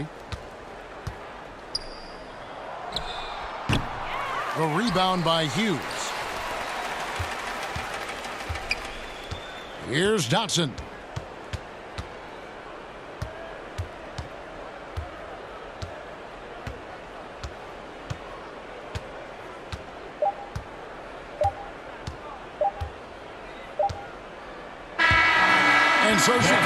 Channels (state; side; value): identical; both; correlation 1.00